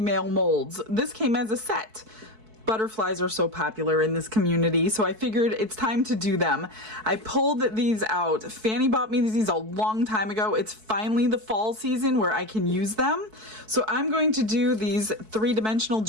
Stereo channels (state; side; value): late; left; 4.6 ms